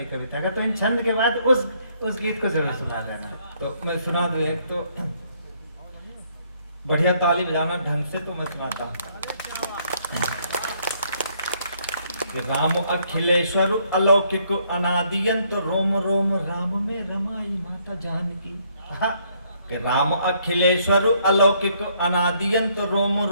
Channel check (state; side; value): inverted; both; correlation -0.68